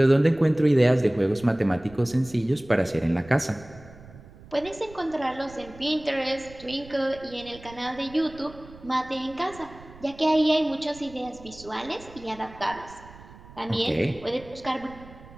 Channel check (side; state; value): right; noise; rumble, 20 dB below the sound